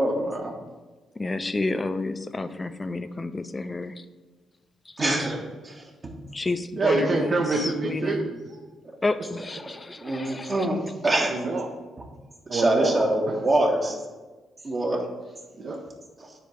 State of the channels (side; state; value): both; normal; correlation 0.84